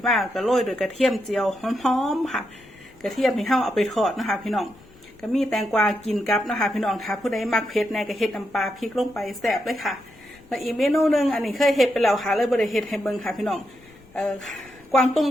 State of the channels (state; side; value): noise; left; rumble, 27 dB below the sound